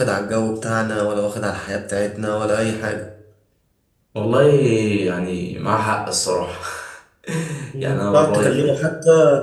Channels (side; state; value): both; identical; correlation 1.00